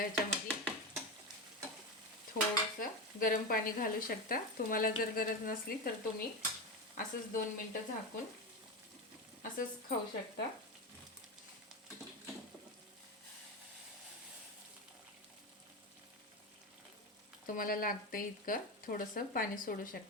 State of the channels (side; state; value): both; normal; correlation 0.17